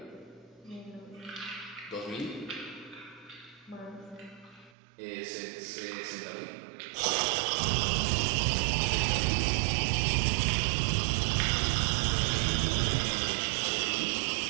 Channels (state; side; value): drops out; left; at 4.8 s